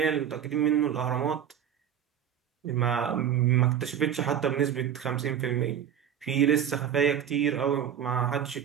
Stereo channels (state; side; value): quieter; left; 9.2 dB